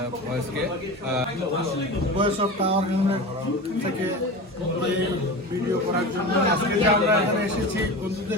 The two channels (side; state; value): both; normal; correlation 0.29